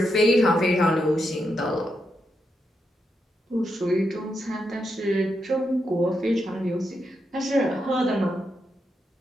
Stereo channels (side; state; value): both; normal; correlation 0.83